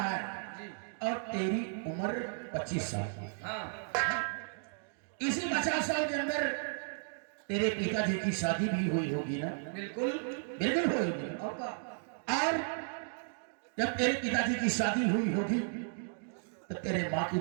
है और तेरी उम्र 25 साल की। हाँ। इसी 50 साल के अंदर तेरे पिताजी की शादी भी हुई होगी ना? बिल्कुल बिल्कुल होगी। और जब तेरे पिताजी की शादी हुई होगी तो तेरे माँ की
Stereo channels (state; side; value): silent; left; digital silence